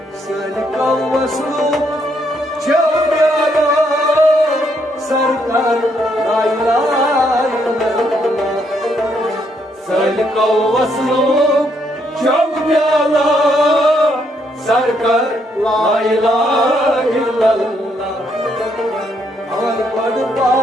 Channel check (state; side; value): normal; both; correlation 0.74